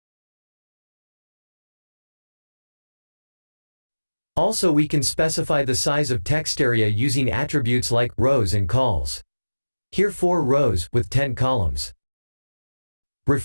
Also, we can specify the size of text area using attributes like rows and cols. Here 4 rows with 10 columns.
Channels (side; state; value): both; inverted; correlation -1.00